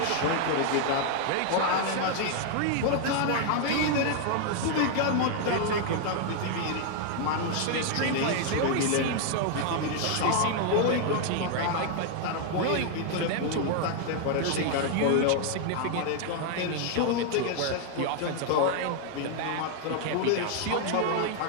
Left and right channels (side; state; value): both; different; correlation 0.00